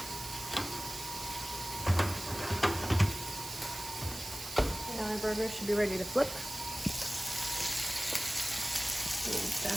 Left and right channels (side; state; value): right; noise; hiss, 9 dB below the sound